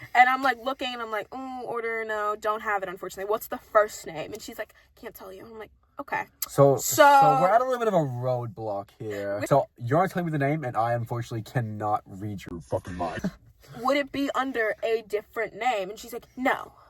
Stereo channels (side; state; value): both; identical; correlation 1.00